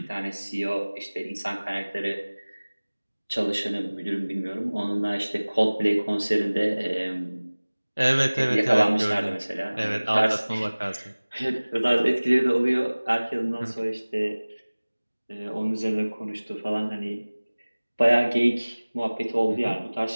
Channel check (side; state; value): both; inverted; correlation -1.00